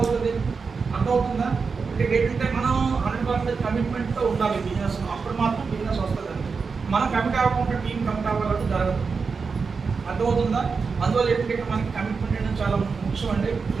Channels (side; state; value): left; quieter; 5.0 dB